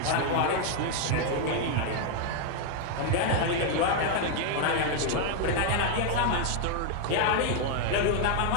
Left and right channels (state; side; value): different; both; correlation 0.00